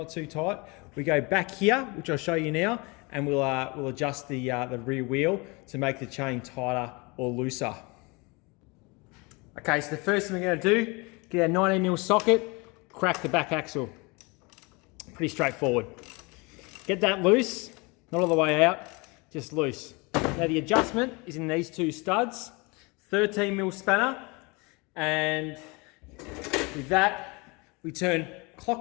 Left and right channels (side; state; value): right; quieter; 27.5 dB